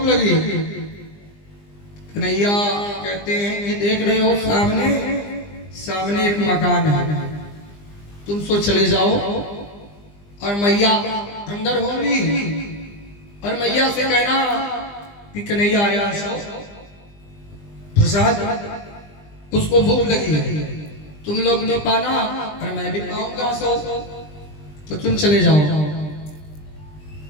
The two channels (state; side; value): late; right; 20 ms